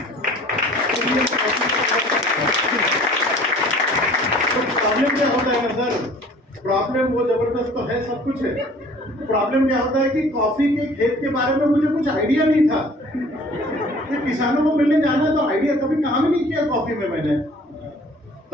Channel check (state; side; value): normal; both; correlation 0.50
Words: तो प्रॉब्लम क्या होता है ना सर, प्रॉब्लम वो जबरदस्त तो है, सब कुछ है। प्रॉब्लम क्या होता है कि कॉफी के खेत के बारे में मुझे कुछ आइडिया नहीं था, कि किसानों को मिलने जाना है तो आइडिया, कभी काम ही नहीं किया कॉफी में मैंने।